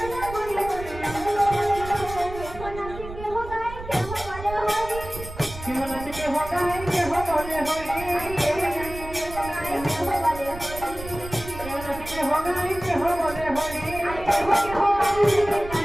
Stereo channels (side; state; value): right; noise; rumble, 12 dB below the sound